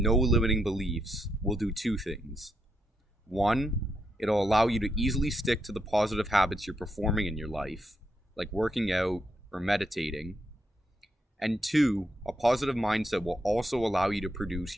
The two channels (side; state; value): both; normal; correlation 0.80